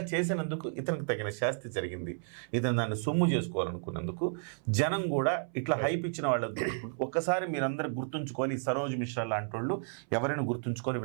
చేసినందుకు ఇతనికి తగిన శాస్తి జరిగింది. ఇతను దాన్ని సొమ్ము చేసుకోవాలనుకున్నందుకు జనం కూడా ఇట్లా హైప్ ఇచ్చిన వాళ్ళు ఒక్కసారి మీరందరూ గుర్తుంచుకోవాలి. సరోజ్ మిశ్రా లాంటి వాళ్ళు ఎవరైనా గుర్తుంచుకోవాలి.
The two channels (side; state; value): left; silent; 56 dB below the other